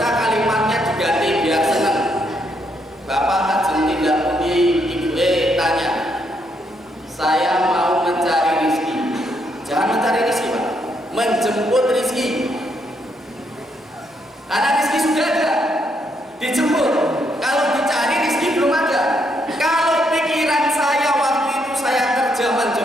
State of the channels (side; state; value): both; normal; correlation 0.75